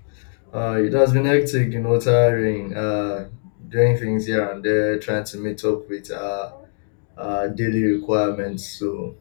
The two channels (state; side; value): silent; right; digital silence